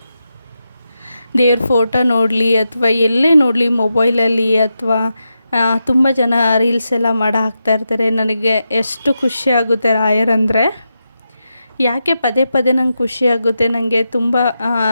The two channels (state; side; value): inverted; both; correlation -0.88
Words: ದೇವ್ರ ಫೋಟೋ ನೋಡಲಿ ಅಥವಾ ಎಲ್ಲೇ ನೋಡಲಿ, ಮೊಬೈಲಲ್ಲಿ ಅಥವಾ ತುಂಬ ಜನ ರೀಲ್ಸ್ ಎಲ್ಲ ಮಾಡಿ ಹಾಕ್ತಾಯಿರ್ತಾರೆ. ನನಗೆ ಎಷ್ಟು ಖುಷಿಯಾಗುತ್ತೆ ರಾಯರಂದರೆ. ಯಾಕೆ ಪದೇ ಪದೇ ನಂಗೆ ಖುಷಿಯಾಗುತ್ತೆ. ನನಗೆ ತುಂಬ